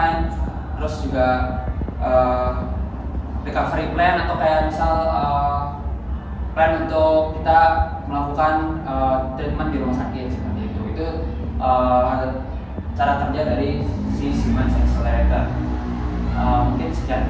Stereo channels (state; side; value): identical; both; correlation 1.00